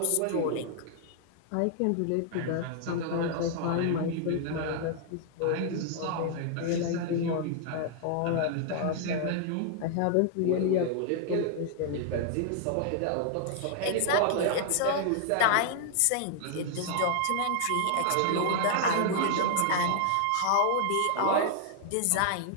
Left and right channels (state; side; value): different; both; correlation 0.00